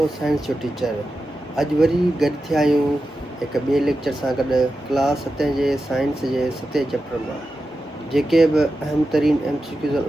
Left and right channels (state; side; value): normal; both; correlation 0.91